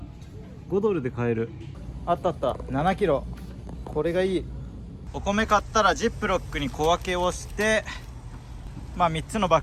5ドルで買える。あったあった、7キロ。これがいい。お米買ったらジップロックに小分けをして、まあ3つのバ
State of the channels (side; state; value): both; identical; correlation 1.00